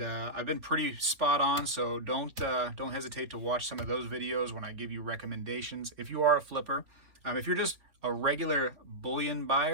I've been pretty spot on, so don't hesitate to watch some of those videos when I give you recommendations. If you are a flipper, if you're just a regular bullion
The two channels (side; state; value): left; late; 3.5 ms